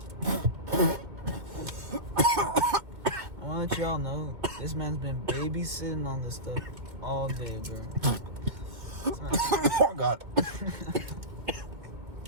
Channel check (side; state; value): left; late; 2.2 ms